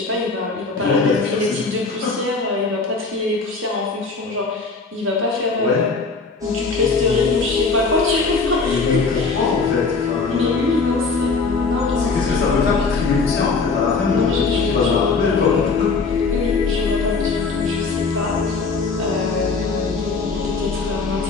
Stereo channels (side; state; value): right; quieter; 4.3 dB